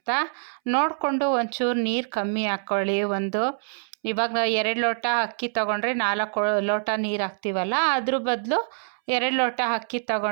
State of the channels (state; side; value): silent; left; 62 dB below the other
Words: ನೋಡಿಕೊಂಡು ಒಂಚೂರು ನೀರು ಕಮ್ಮಿ ಹಾಕ್ಕೊಳ್ಳಿ. ಇವಾಗ 2 ಲೋಟ ಅಕ್ಕಿ ತೊಗೊಂಡ್ರೆ 4 ಲೋಟ ನೀರು ಹಾಕ್ತೀವಲ್ಲ, ಅದ್ರ ಬದಲು 2 ಲೋಟ ಅಕ್ಕಿ